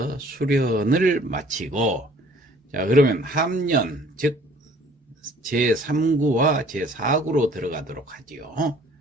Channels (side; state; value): both; normal; correlation 0.55